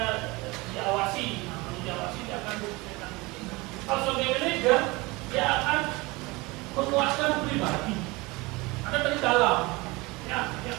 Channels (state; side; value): quieter; left; 23.7 dB